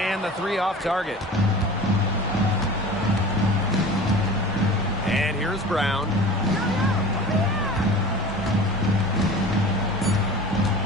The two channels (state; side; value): normal; both; correlation 0.38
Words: the three off target. And here's Brown.